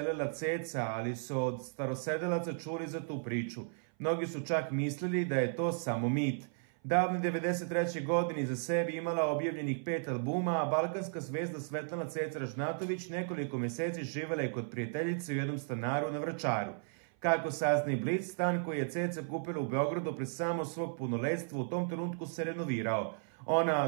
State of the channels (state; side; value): silent; left; 55 dB below the other